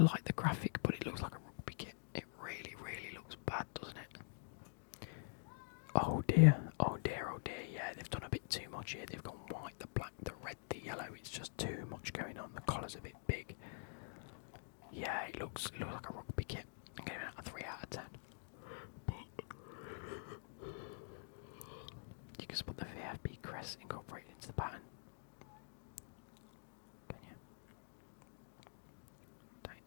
like the graphic, but it looks like a rugby kit. It really looks bad, doesn't it? Oh dear. Yeah, they've done a bit too much here. They've gone white, the black, the red, the yellow. It's just too much going on. The collar's a bit big. Yeah, it looks like a rugby kit. I'm giving it a 3 out of 10. You can spot the VFB crest incorporated into the pattern. Can you? Don't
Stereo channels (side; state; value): right; silent; digital silence